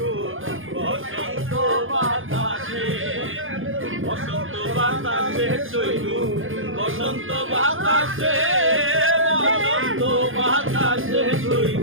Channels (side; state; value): left; late; 0.59 ms